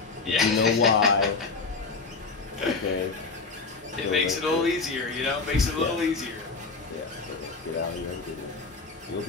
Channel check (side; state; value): right; quieter; 4.3 dB